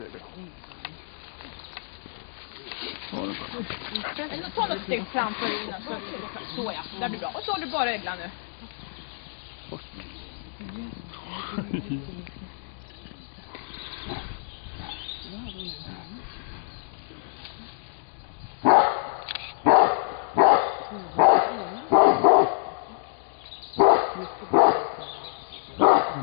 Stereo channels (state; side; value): silent; right; digital silence